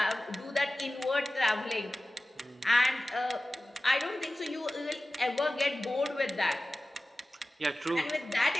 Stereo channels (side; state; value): both; normal; correlation 0.96